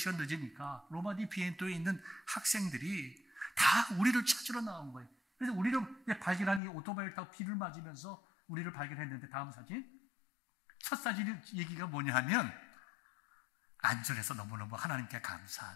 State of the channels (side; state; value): right; drops out; at 6.6 s